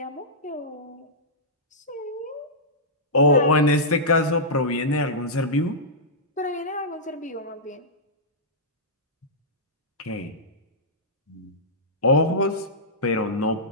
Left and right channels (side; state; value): both; normal; correlation -0.13